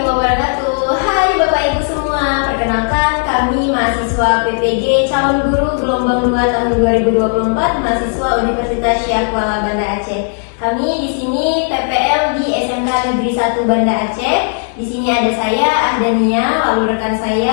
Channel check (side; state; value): right; silent; 56 dB below the other